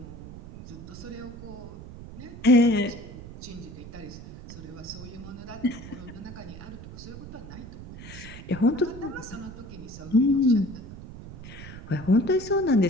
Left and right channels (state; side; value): noise; right; rumble, 13 dB below the sound